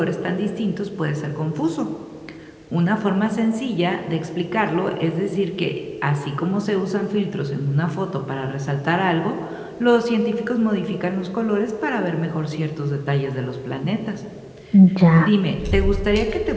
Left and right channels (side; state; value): both; identical; correlation 1.00